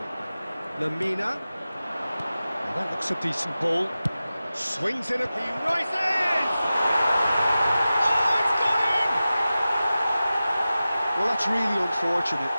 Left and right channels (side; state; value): both; inverted; correlation -0.95